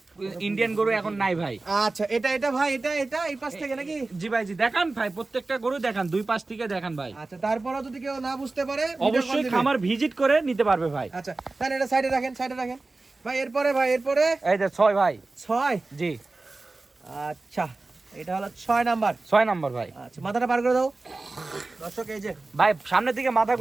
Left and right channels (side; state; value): left; quieter; 3.4 dB